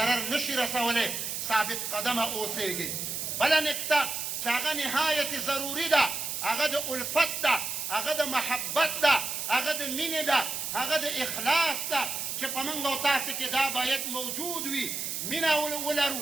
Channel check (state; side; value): noise; right; hiss, 3 dB below the sound